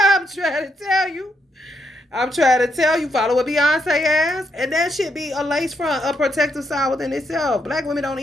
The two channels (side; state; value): both; normal; correlation 0.78